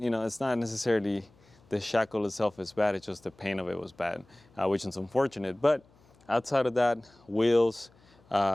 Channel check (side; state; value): left; noise; hum, 30 dB below the sound